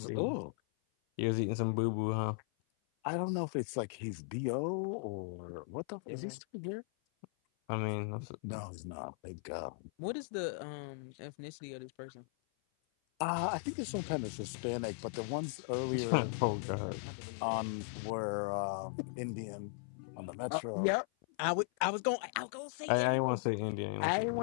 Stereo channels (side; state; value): right; silent; 53 dB below the other